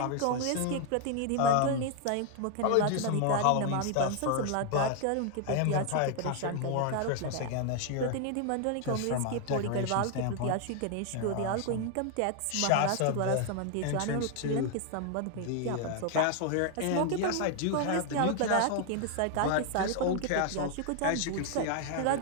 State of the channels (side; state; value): both; different; correlation 0.00